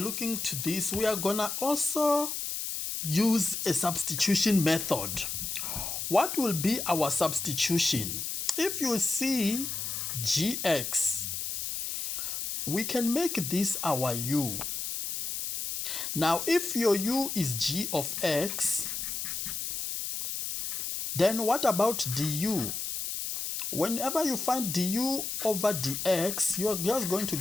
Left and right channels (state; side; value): noise; left; hiss, 4 dB below the sound